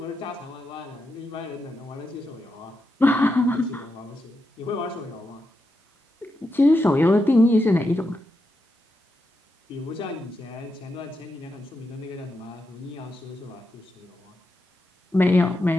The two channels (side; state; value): both; normal; correlation 0.86